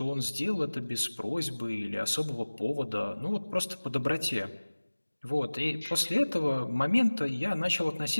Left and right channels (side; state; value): both; inverted; correlation -1.00